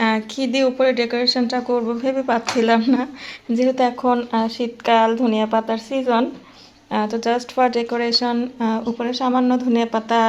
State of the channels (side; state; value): both; identical; correlation 1.00